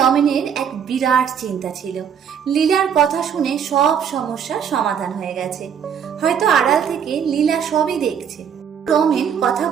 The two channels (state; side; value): quieter; left; 7.8 dB